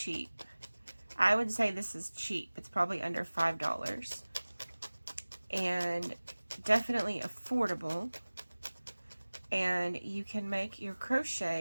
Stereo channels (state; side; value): inverted; both; correlation -1.00